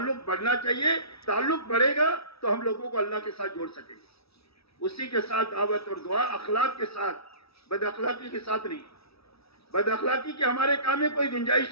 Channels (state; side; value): late; right; 0.77 ms